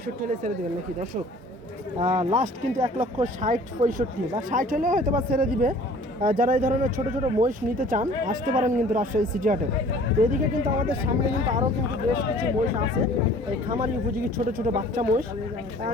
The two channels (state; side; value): normal; both; correlation 0.50